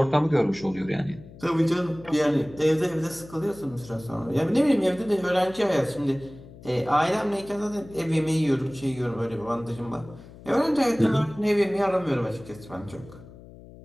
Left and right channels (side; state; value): left; noise; hum, 19 dB below the sound